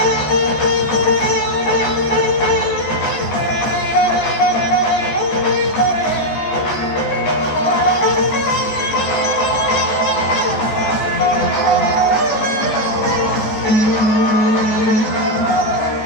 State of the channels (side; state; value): right; late; 14 ms